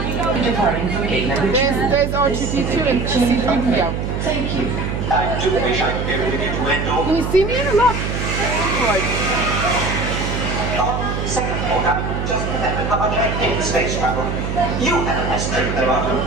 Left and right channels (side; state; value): right; noise; hum, 3 dB below the sound